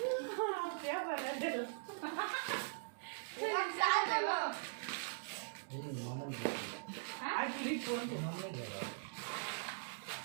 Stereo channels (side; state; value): left; silent; digital silence